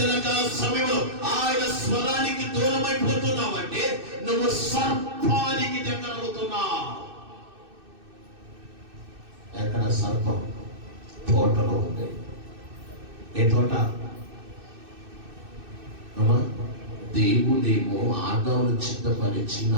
సమయంలో ఆయన స్వరానికి దూరం అయిపోతున్నావంటే నువ్వు సర్పానికి దగ్గర అవుతున్నావు. ఎక్కడ సర్పం? తోటలో ఉంది. ఏ తోట? అమ్మా, దేవుడేమో ఆదామును చిత్తపరిచి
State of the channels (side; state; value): left; late; 2.6 ms